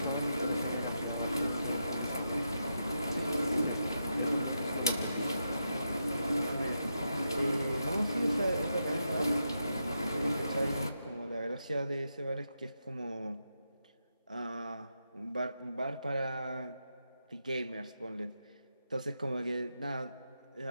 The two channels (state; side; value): inverted; both; correlation -0.85